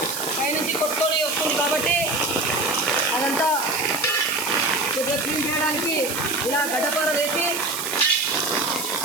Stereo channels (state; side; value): noise; right; hiss, 5 dB below the sound